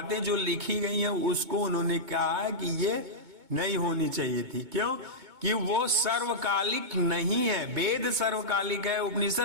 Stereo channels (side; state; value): left; late; 2.2 ms